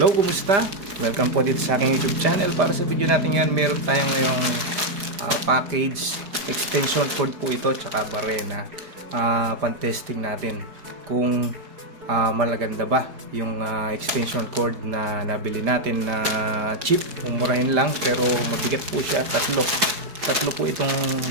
kumusta? Welcome po dito sa aking YouTube channel. Para sa video natin yan, meron tayong ngayong package extension cord po ito tsaka barena. Pan-testing natin kung malaganda ba yung extension cord na nabili natin na cheap. Umurahin lang pero mabigat po siya. Tatlo po itong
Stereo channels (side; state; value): left; late; 5.0 ms